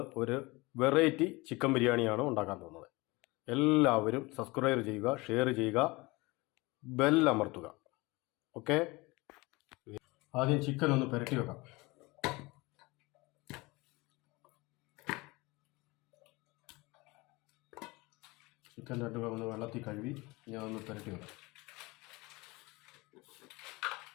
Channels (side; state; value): right; quieter; 23.5 dB